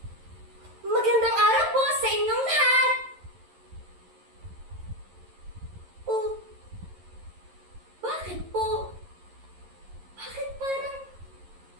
Magandang araw po sa inyong lahat! Oh, bakit po? Bakit parang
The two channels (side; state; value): left; late; 11 ms